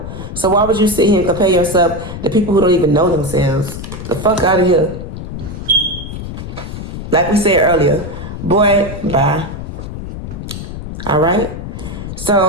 So why would you sit here and compare yourself to people who don't even know themselves? The fuck out of here. Like we said earlier, boy, bye. All right?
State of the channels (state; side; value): noise; left; rumble, 8 dB below the sound